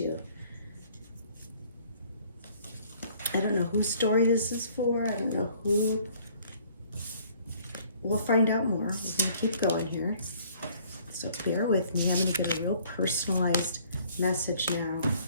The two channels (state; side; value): inverted; both; correlation -0.58